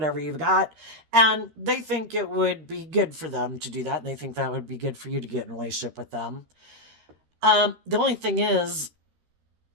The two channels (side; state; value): left; late; 13 ms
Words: you've got. And they think it would be good for them to do that. And they think that would be good for you to get in a relationship with them. The only thing is,